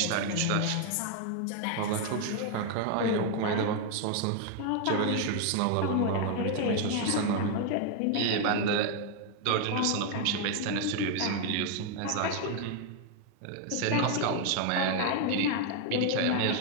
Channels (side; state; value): both; different; correlation 0.00